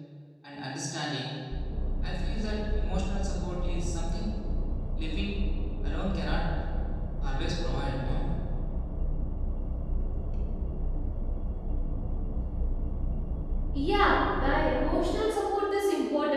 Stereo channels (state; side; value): identical; both; correlation 1.00